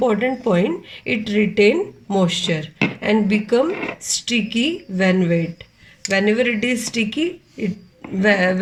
point. It retain moisture and become sticky when wet. Whenever it is sticky,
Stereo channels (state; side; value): identical; both; correlation 1.00